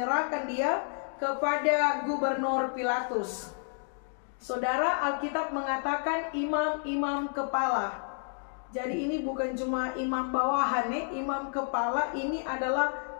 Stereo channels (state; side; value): silent; right; digital silence